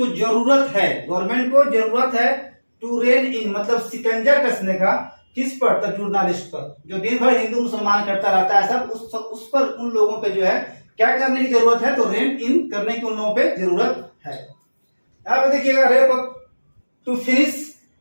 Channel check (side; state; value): both; inverted; correlation -1.00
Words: जरूरत है, गवर्नमेंट को जरूरत है टू रेन इन मतलब शिकंजा कसने का, किस पर, तो जर्नलिस्ट पर, जो दिन भर हिंदू मुसलमान करता रहता है सब, उस पर, उन लोगों पे जो है क्या करने की जरूरत है, तो रेन इन करने की उन लोगों पे जरूरत है। यहां पे देखिएगा, रेप टू फिनिश